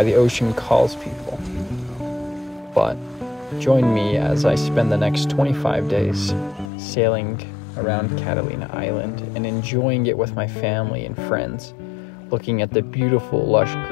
the ocean calls people. But join me as I spend the next 25 days sailing around Catalina Island and enjoying it with my family and friends, looking at the beautiful lush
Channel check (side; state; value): right; drops out; at 6.7 s